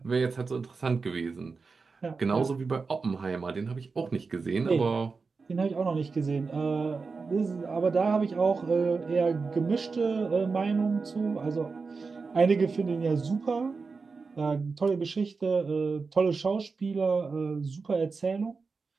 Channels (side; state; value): left; quieter; 4.6 dB